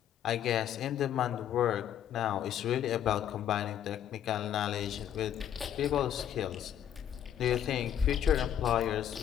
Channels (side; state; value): right; quieter; 9.9 dB